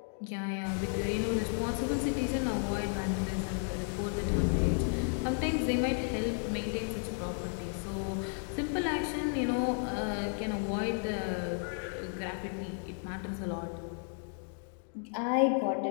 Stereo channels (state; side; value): silent; right; 56 dB below the other